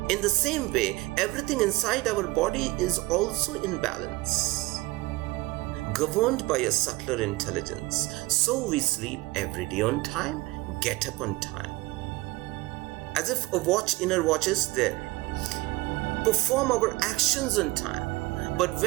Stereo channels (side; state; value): left; quieter; 20.7 dB